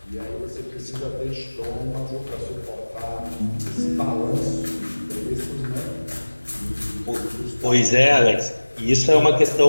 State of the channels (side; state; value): both; inverted; correlation -1.00